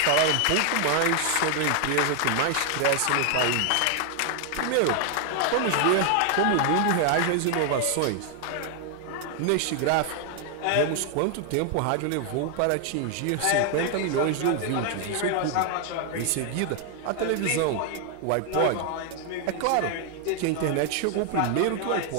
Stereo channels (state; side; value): different; both; correlation 0.00